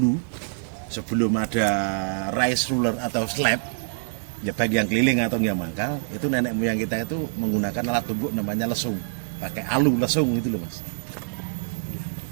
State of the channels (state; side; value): silent; left; 62 dB below the other